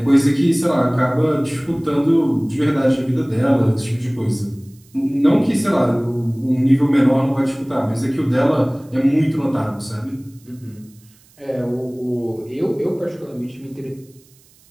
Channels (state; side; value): noise; right; hiss, 30 dB below the sound